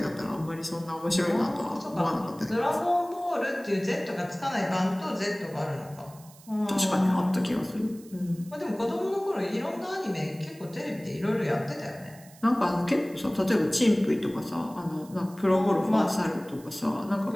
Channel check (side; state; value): right; noise; hiss, 23 dB below the sound